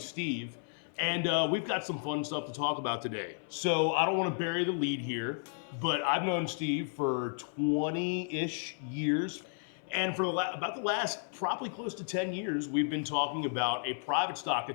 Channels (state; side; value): silent; right; 56 dB below the other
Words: Steve, and we've got some fun stuff to talk about today. So I don't want to bury the lead here, but I've known Steve for 20-ish years, and for about the last probably close to 10 years, we've been talking about a private stock